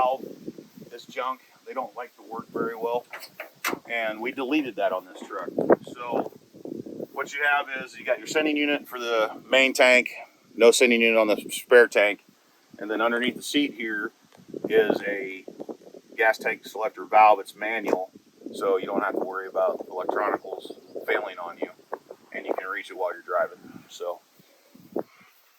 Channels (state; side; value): identical; both; correlation 1.00